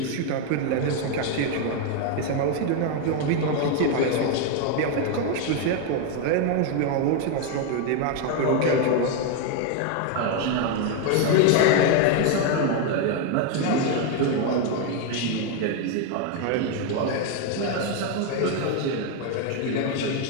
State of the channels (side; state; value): both; different; correlation 0.01